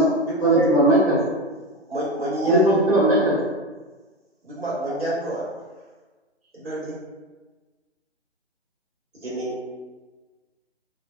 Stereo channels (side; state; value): both; normal; correlation 0.20